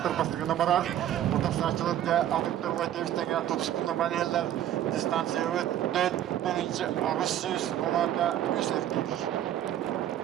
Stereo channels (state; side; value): quieter; left; 11.7 dB